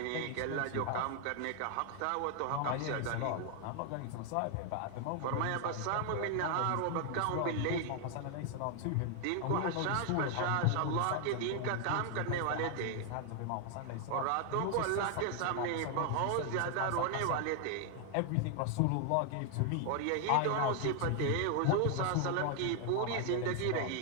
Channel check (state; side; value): different; both; correlation 0.00